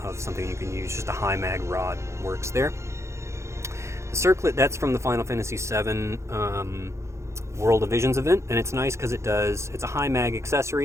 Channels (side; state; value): left; late; 0.14 ms